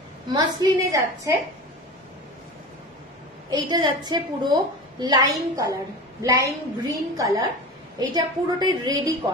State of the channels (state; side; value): normal; both; correlation 0.31